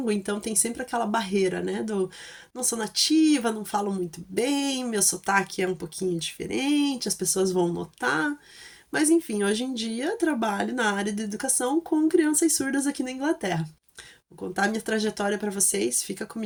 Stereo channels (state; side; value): identical; both; correlation 1.00